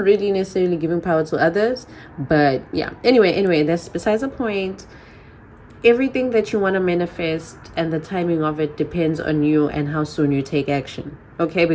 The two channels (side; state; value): both; identical; correlation 1.00